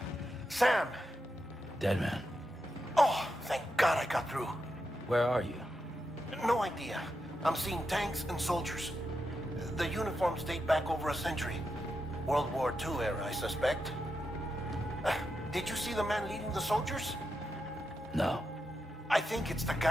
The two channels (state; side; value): normal; both; correlation 0.86